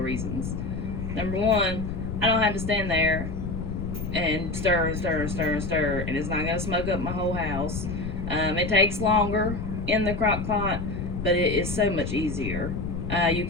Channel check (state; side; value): noise; left; rumble, 4 dB below the sound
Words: reasons. Number one, I don't have to stand there and stir and stir and stir and stir, and it's not going to smoke up my whole house. It takes longer in the crock pot, but it is so much easier. You